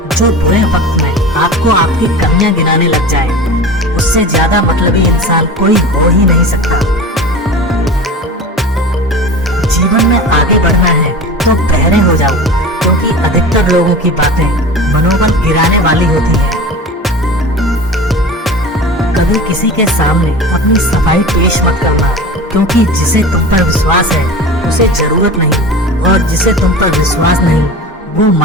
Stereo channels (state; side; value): normal; both; correlation 0.34